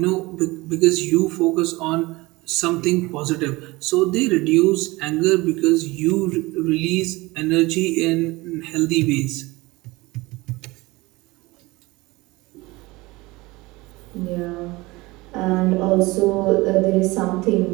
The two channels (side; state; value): left; quieter; 21.8 dB